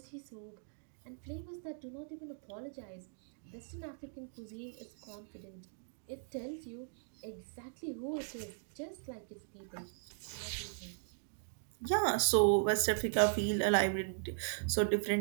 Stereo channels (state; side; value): silent; left; digital silence